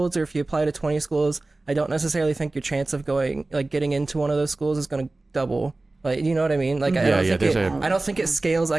or if you apply to 20 schools, I don't necessarily think your chance of getting into one of those schools is going to double. Like, you know what I mean? Like, I don't think it scales or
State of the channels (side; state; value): left; quieter; 3.1 dB